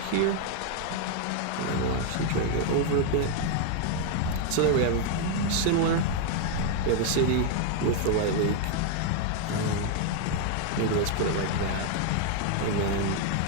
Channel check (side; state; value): both; different; correlation 0.00